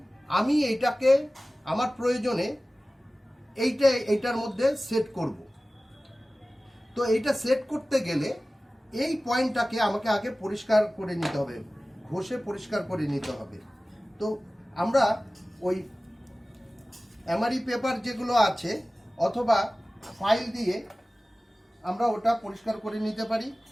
আমি এইটাকে আমার প্রয়োজনে এইটার মধ্যে সেট করব। তো এইটা সেট করতে গেলে এই পয়েন্টটাকে আমাকে আগে পরিষ্কার করে নিতে হবে, ঘষে পরিষ্কার করে নিতে হবে। তো আমরা ওই এমআরই পেপার যেগুলো আছে অথবা ফাইল দিয়ে আমরা ওটা পরিষ্কার করে নিতে পারি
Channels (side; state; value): both; normal; correlation 0.97